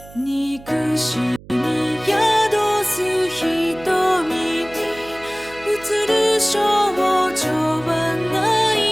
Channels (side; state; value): right; noise; hum, 20 dB below the sound